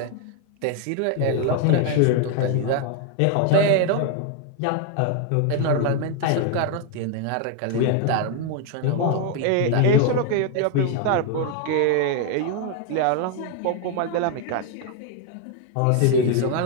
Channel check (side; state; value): both; different; correlation 0.00